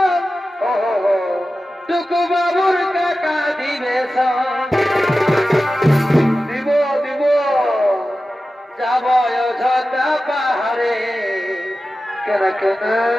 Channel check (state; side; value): normal; both; correlation 0.94